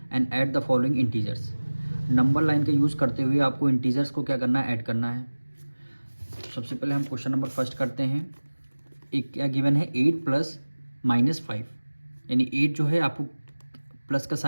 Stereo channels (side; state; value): both; inverted; correlation -1.00